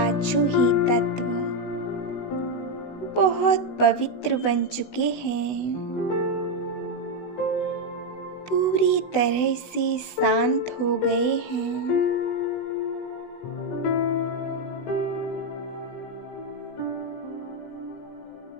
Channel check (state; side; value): late; right; 16 ms